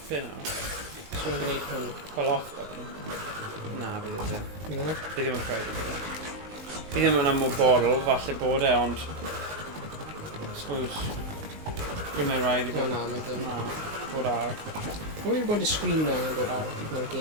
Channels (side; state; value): left; late; 19 ms